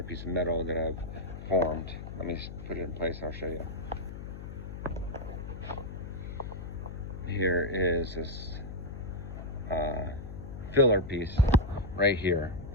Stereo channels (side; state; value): left; noise; hum, 10 dB below the sound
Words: piece of metal that I've formed. Let me put it in place, I'll show you. Here is this filler piece right here.